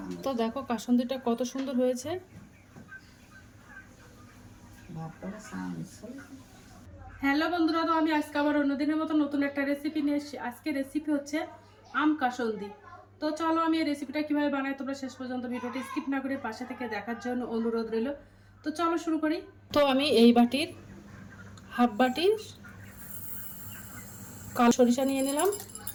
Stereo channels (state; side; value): identical; both; correlation 1.00